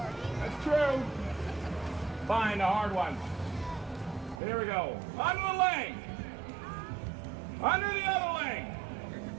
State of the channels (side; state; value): left; drops out; at 4.4 s